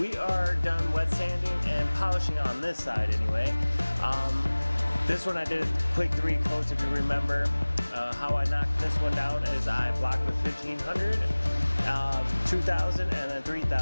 are done wet sanding and polishing on this side anyway. This one I did a quick 3 coats, if you remember. How I knocked this one down is I blocked with 1500, 2000, and then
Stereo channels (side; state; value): both; inverted; correlation -1.00